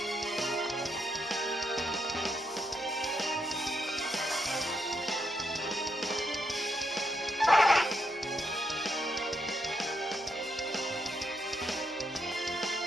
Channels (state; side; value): noise; left; hum, 29 dB below the sound